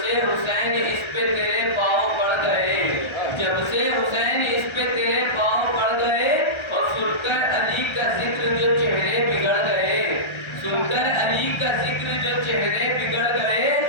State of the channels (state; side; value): late; right; 1.3 ms